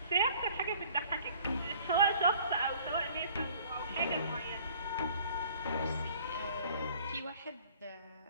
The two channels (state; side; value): inverted; both; correlation -0.54